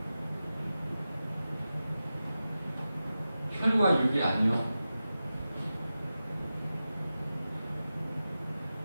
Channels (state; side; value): inverted; both; correlation -0.93